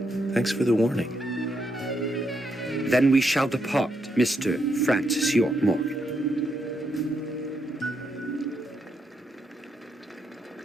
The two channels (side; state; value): both; normal; correlation 0.79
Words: Thanks for the warning. Then we shall depart, Mr. Francis York Morgan.